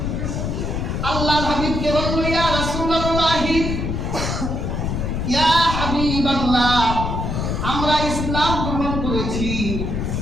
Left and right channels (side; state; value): left; noise; rumble, 2 dB below the sound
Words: আল্লাহর হাবিবকে বলল, ইয়া রাসূলুল্লাহ ইয়া হাবিবাল্লাহ, আমরা ইসলাম গ্রহণ করেছি,